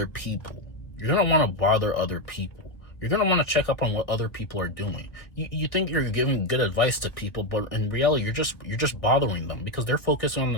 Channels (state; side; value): late; right; 1.3 ms